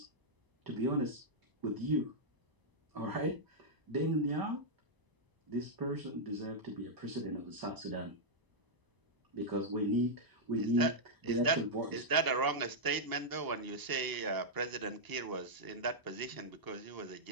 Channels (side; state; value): left; late; 1.0 ms